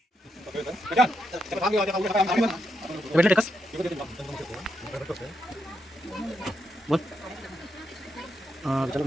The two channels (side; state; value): both; normal; correlation 0.82